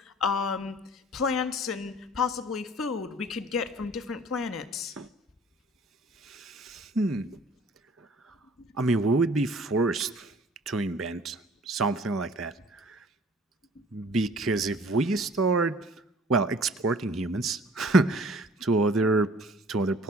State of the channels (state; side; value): normal; both; correlation 0.51